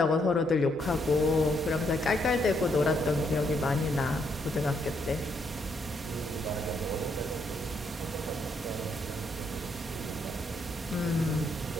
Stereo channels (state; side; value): normal; both; correlation 0.75